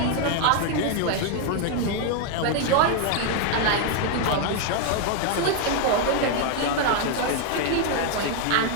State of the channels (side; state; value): both; different; correlation 0.00